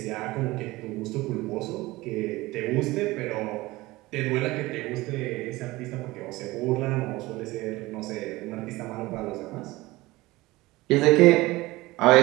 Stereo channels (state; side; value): quieter; left; 19.8 dB